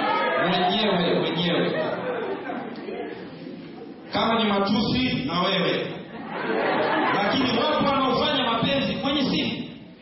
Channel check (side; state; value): both; identical; correlation 1.00